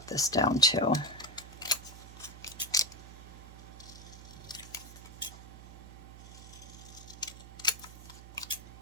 this down too.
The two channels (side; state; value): right; noise; hum, 15 dB below the sound